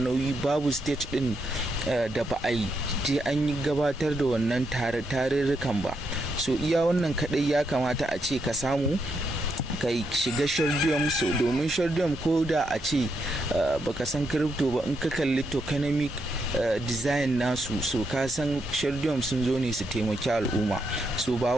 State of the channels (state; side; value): normal; both; correlation 0.80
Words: nauyi, babu state ɗin da ba a yi je an yi gabatar da wannan tarurrukan ba. So iya wannan kaɗai ya kamata a ce ka samu ka shiga Shardeum. So domin Shardeum ko da a ce baka san crypto ba, in ka kalli tokenomic design nasu, so ka san Shardeum sun zo ne su taimaki al'umma. So ba